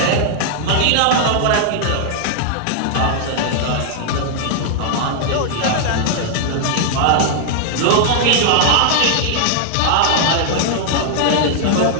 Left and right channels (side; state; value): both; different; correlation -0.01